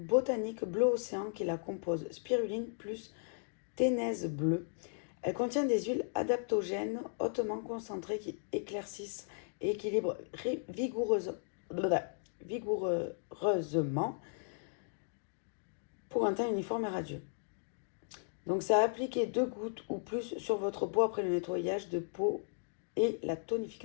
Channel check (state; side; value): silent; right; digital silence